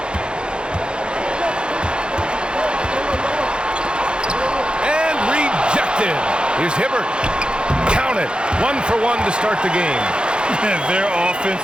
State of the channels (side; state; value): left; late; 0.052 ms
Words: And rejected. Here's Hibbert. Count it. 1 for 1 to start the game. Their offense